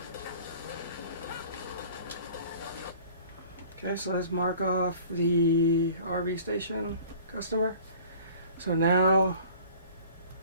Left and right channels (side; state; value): both; inverted; correlation -0.48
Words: Okay, so let's mark off the RV station customer. So now